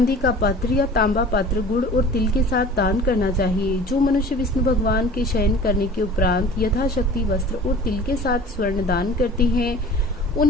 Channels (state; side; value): normal; both; correlation 0.43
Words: का पात्र या तांबा पात्र गुड़ और तिल के साथ दान करना चाहिए। जो मनुष्य विष्णु भगवान के शयन करने के उपरांत यथाशक्ति वस्त्र और तिल के साथ स्वर्ण दान करते हैं